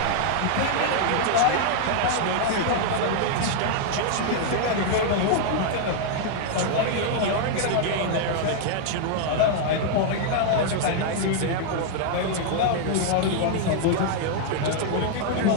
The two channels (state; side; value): different; both; correlation -0.01